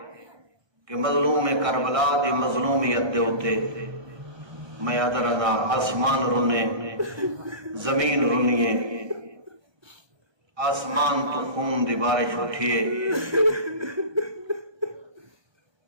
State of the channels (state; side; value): late; left; 1.3 ms